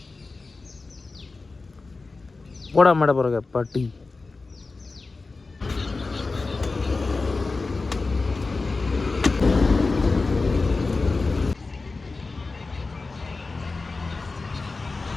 പോടാ അമ്മയുടെ പുറകെ പട്ടി.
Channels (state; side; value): quieter; right; 3.8 dB